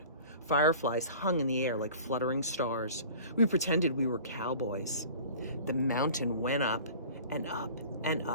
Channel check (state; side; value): inverted; both; correlation -0.43